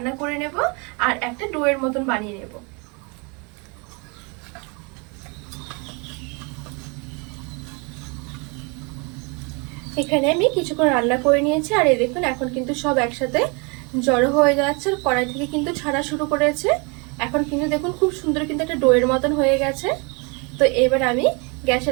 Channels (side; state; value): left; quieter; 31.6 dB